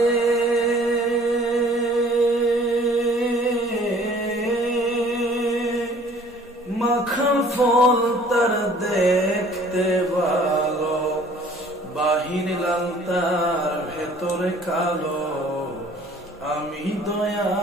মাখা ফল তার দেখতে ভালো, বাহির লাল তার ভেতরে কালো। আমি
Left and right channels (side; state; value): both; normal; correlation 0.53